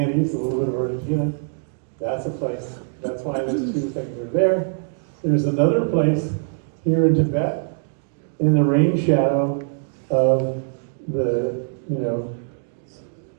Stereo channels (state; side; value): silent; left; digital silence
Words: a little bit of Argentina. That's a place. That's why those 2 things are there. There's another place here in Tibet, in the rain shadow of the